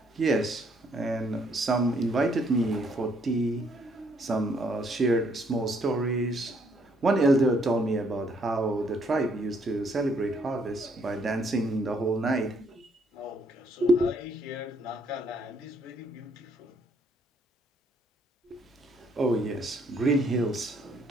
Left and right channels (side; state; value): both; normal; correlation 0.68